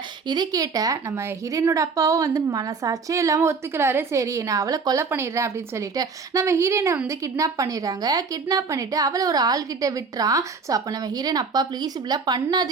இதை கேட்ட நம்ம ஹீரோயினோட அப்பாவும் வந்து மனசாட்சியே இல்லாமல் ஒத்துக்கிறாரு. சரி நான் அவளை கொலை பண்ணிடுறேன் அப்படின்னு சொல்லிட்டு நம்ம ஹீரோயினை வந்து கிட்னாப் பண்ணிடுறாங்க. கிட்னாப் பண்ணிவிட்டு அவளை ஒரு ஆள்கிட்ட விட்டுறான். ஸோ அப்போ நம்ம ஹீரோயின், அப்பா ப்ளீஸ் இப்படிலாம்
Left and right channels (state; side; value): quieter; left; 4.9 dB